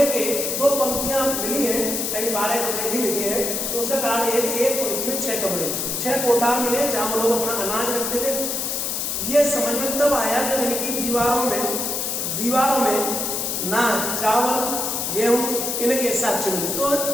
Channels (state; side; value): noise; left; hiss, 1 dB below the sound